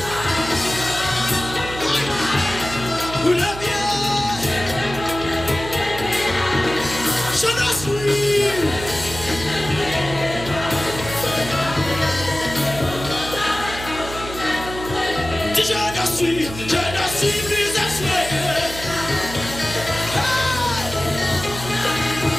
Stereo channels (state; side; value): noise; right; hum, 11 dB below the sound